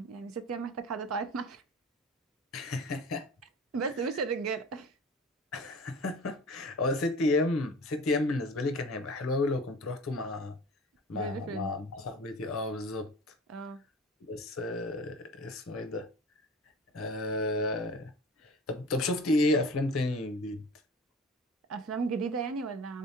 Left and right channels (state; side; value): normal; both; correlation 0.40